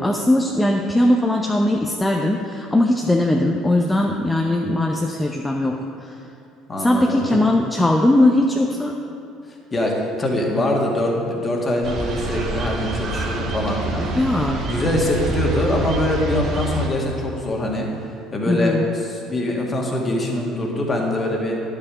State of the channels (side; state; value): both; normal; correlation 0.77